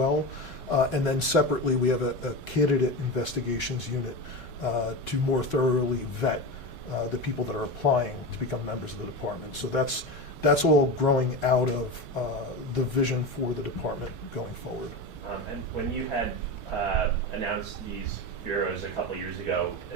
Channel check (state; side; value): normal; both; correlation 0.23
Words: And then separately, we have a candidate investigations unit to more thoroughly vet the people that are applying to become members of the department. So that's all growing out of the vision for the department going forward. And when you had announced these bureaus a couple years ago,